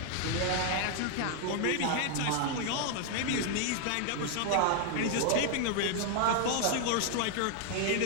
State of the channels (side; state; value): both; different; correlation 0.00